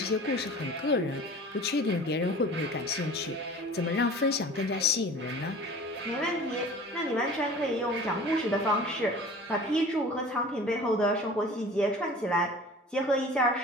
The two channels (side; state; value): both; normal; correlation 0.42